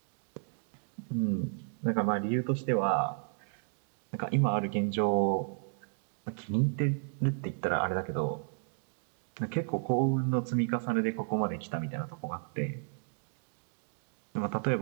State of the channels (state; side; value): silent; left; digital silence